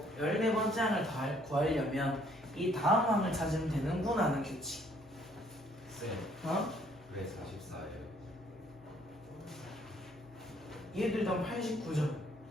14번째 항을 구하려면 이 다음 항을 찾으면 되는구나 하는 규칙. 쌤, 어? 왜 44예요? 얘들 다 89점.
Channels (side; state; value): both; normal; correlation 0.64